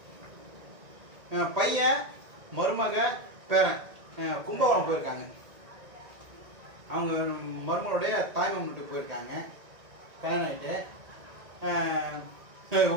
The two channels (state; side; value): late; left; 1.8 ms